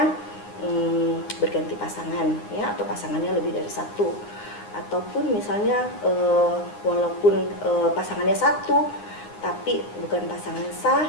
berganti pasangan ya, atau pasangannya lebih dari satu, ataupun misalnya walaupun pasangannya satu tapi bukan pasangan sah,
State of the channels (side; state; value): right; late; 9.7 ms